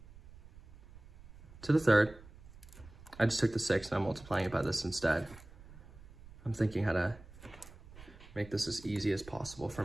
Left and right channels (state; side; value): noise; right; rumble, 19 dB below the sound